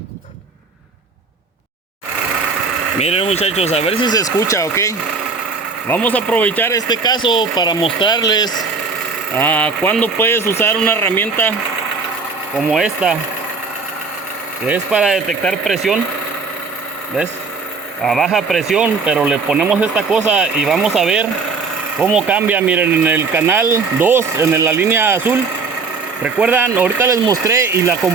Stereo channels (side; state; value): left; quieter; 4.5 dB